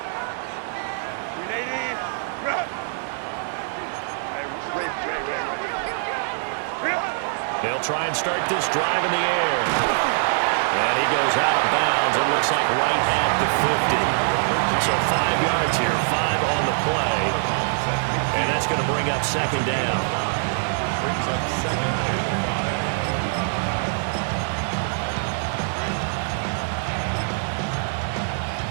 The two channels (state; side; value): silent; left; digital silence